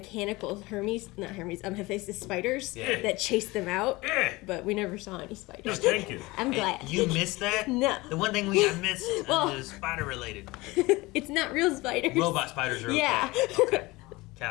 Hephaestus spiders Yeah. that chased them out, Yeah. but we never saw any No, spiders. thank you. I'm Hey, glad. you missed that? No. The one thing I missed Well- is spider related. It's not real spiders. Robot spiders are okay. Yeah. Okay.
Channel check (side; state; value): right; quieter; 21.7 dB